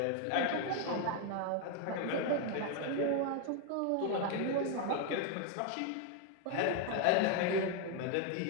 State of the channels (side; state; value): both; different; correlation 0.01